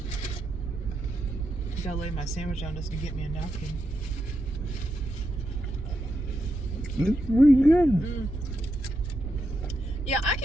Gotta lay my sandwich down just to get me a napkin. It's pretty good. Yeah, I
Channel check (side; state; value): both; normal; correlation 0.85